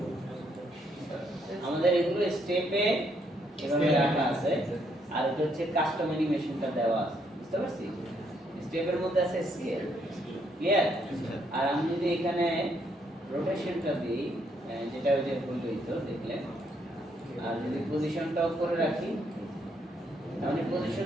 আমাদের এগুলো স্টেপে এভাবে রাখা আছে আর এটা হচ্ছে কাস্টম অ্যানিমেশনটা দেওয়া আছে বুঝতে পারছি। স্টেপের মধ্যে আছে স্কেল ক্লিয়ার। আর আমি যদি এখানে রোটেশনটা দিই যেটা ওই যে বলই তো দেখলেন, আর যদি পজিশনটা অফ করে রাখি তাহলে পজিশন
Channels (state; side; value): normal; both; correlation 0.73